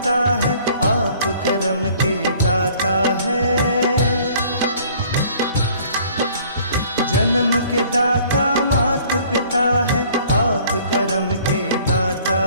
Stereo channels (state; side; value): inverted; both; correlation -0.55